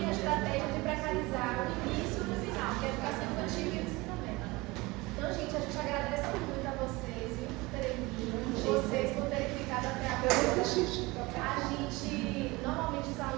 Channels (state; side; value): quieter; left; 22.6 dB